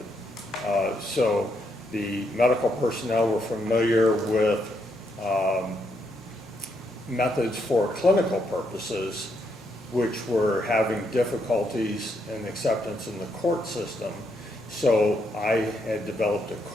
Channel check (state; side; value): normal; both; correlation 0.77